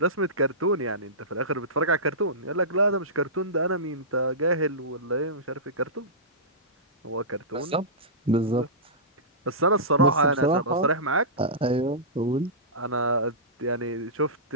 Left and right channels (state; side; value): normal; both; correlation -0.19